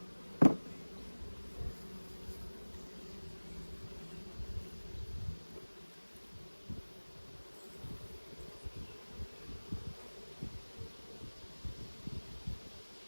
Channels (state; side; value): inverted; both; correlation -1.00